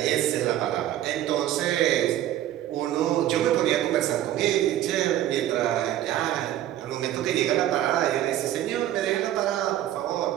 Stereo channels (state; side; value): quieter; left; 12.6 dB